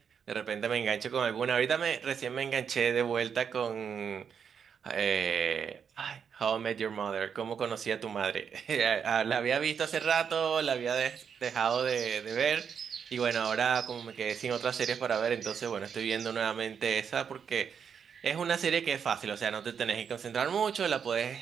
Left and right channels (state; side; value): quieter; left; 7.1 dB